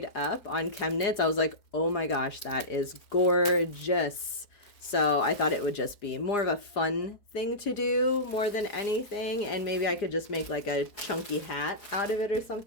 up on Chemnitz, I was like, oh my gosh, that is gorgeous. So I thought it would just be more of a fun thing to do more than anything. And maybe I could just make like a chunky hat out of it or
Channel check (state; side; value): late; right; 4.9 ms